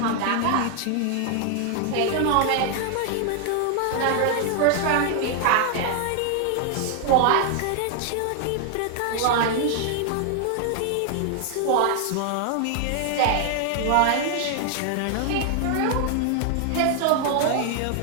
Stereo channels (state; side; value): different; both; correlation 0.00